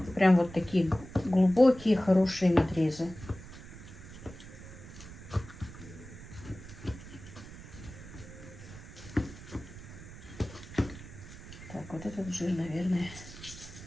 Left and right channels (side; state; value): right; noise; rumble, 15 dB below the sound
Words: прям вот такие глубокие, хорошие надрезы. Так, вот этот жир, наверное,